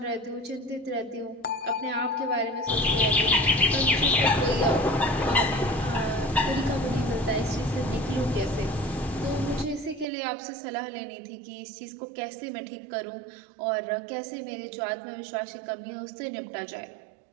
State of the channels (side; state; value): left; drops out; at 10.1 s